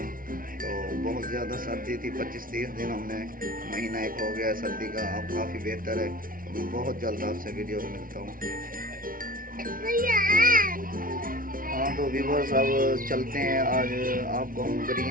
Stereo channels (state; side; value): late; left; 0.41 ms